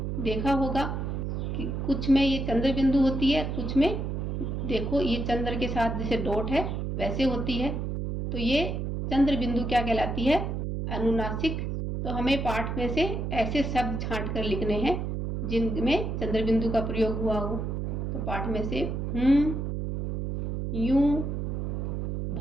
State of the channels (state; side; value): noise; right; hum, 2 dB below the sound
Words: देखा होगा कि कुछ में ये चंद्र बिंदु होती है, कुछ में देखो ये चंद्र के साथ जैसे डॉट है वैसे होती है। तो ये चंद्र बिंदु क्या कहलाती है? अनुनासिक। तो हमें पाठ में से ऐसे शब्द छांट कर लिखने हैं जिनमें चंद्र बिंदु का प्रयोग हुआ हो। तो पाठ में से यूं,